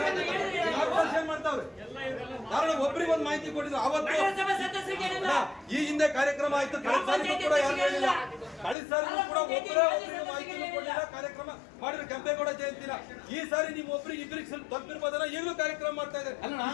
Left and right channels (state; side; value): drops out; right; at 8.8 s